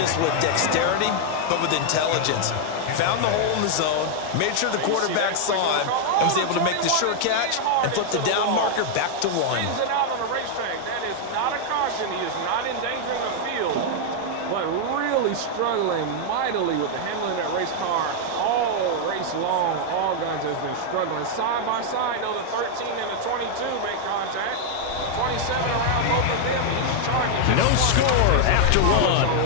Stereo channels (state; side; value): different; both; correlation 0.00